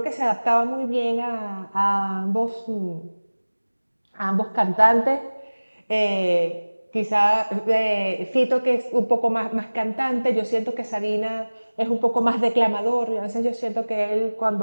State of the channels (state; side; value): inverted; both; correlation -1.00